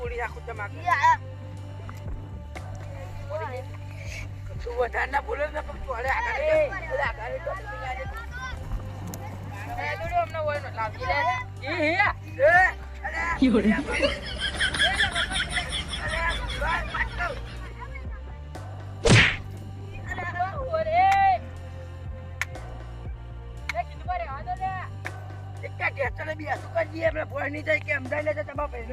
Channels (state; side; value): identical; both; correlation 1.00